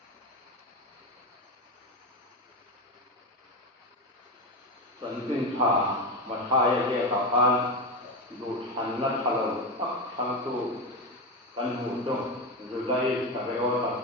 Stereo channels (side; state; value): both; normal; correlation 0.16